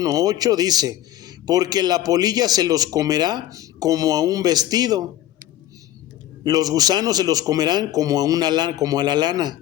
8 dice, porque la polilla se los comerá como a un vestido, los gusanos se los comerán como a la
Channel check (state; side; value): quieter; right; 13.1 dB